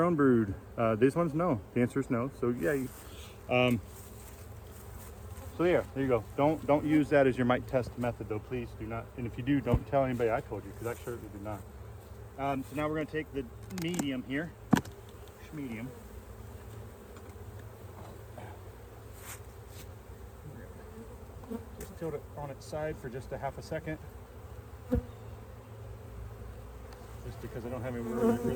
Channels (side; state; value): both; identical; correlation 1.00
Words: brood? These ones, no. The answer is no. So yeah. So there you go. Don't use that as your mite test method, though. Please do not. And if you do, don't tell anybody I told you, because I certainly did not. So now we're going to take the medium here. Medium. Just tilt it on its side for just a half a second. Just because I don't have anywhere